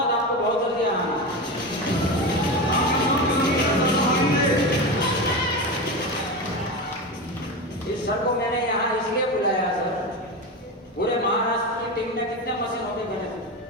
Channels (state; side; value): normal; both; correlation 0.21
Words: आपको बहुत जल्दी आना। इस सर को मैंने यहाँ इसलिए बुलाया सर, पूरे महाराष्ट्र की टीम में कितने मशीन होगी गणेश?